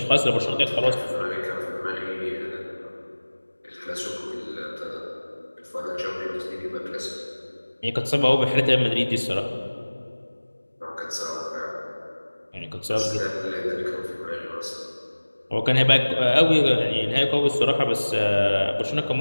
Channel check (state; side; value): inverted; both; correlation -1.00